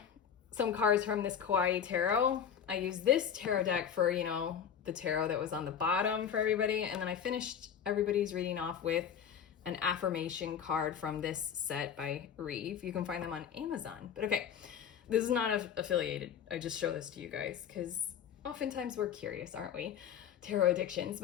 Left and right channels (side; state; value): right; quieter; 8.2 dB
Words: some cards from this Kawaii Tarot. I used this tarot deck for, you know, the tarot that was on the bottom for everybody, and then I finished everybody's reading off with an affirmation card from this set by Reeve. You can find them on Amazon. But okay, this is not affiliated. I just show this to you guys because oftentimes we're curious, aren't we? Tarot addictions.